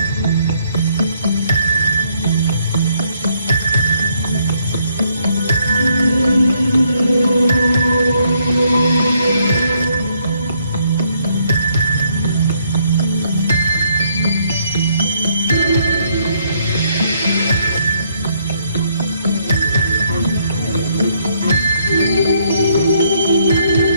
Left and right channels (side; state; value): both; inverted; correlation -0.71